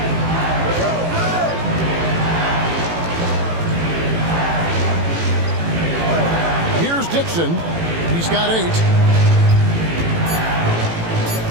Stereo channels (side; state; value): left; late; 18 ms